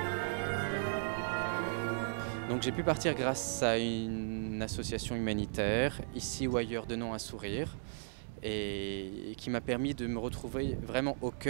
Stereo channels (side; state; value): left; silent; digital silence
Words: Donc j'ai pu partir grâce à une association humanitaire, ici ou ailleurs, de nom à sourire, et qui m'a permis de me retrouver vraiment au